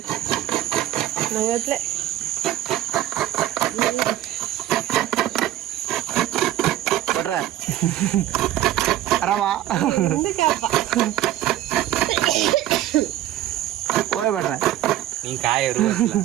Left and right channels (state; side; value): quieter; left; 13.6 dB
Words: ನಂಗತ್ಲೆ ಬಟ್ರ ಆರಾಮ ಓಯ್ ಬಟ್ರ ನೀನ್ ಕಾಯರು